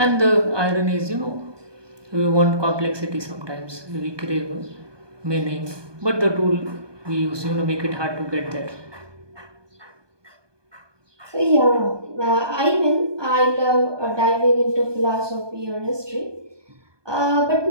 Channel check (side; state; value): left; late; 1.2 ms